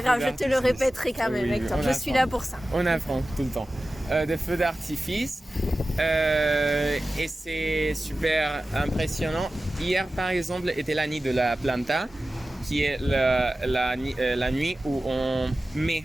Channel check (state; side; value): normal; both; correlation 0.95